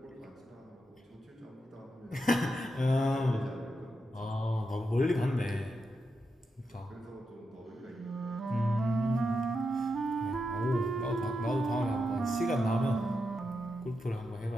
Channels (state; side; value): normal; both; correlation 0.86